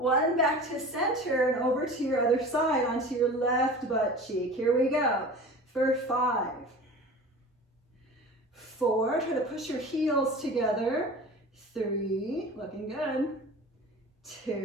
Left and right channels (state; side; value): normal; both; correlation 0.37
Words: back to center and over to your other side onto your left butt cheek. Here we go, for 5, 4, try to push your heels together. 3, looking good.